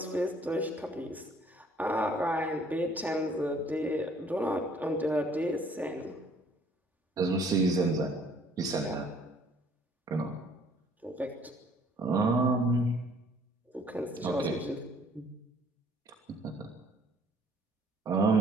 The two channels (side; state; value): both; normal; correlation 0.59